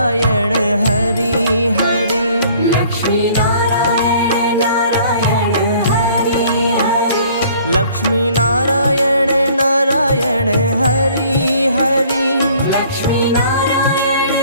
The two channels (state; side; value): inverted; both; correlation -0.56